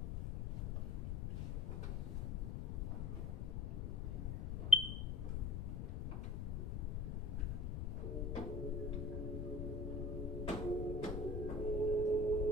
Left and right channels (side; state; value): left; noise; rumble, 2 dB below the sound